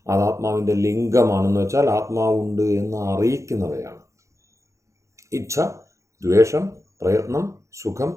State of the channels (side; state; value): left; late; 0.15 ms